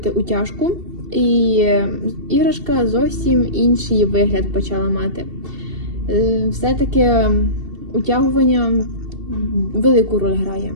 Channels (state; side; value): late; left; 2.7 ms